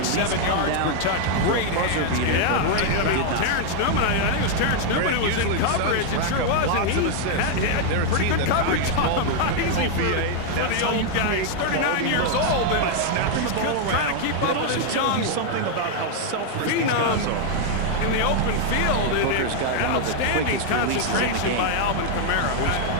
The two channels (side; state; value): both; different; correlation 0.00